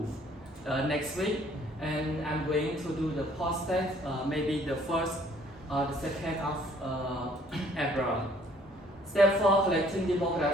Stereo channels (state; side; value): normal; both; correlation 0.60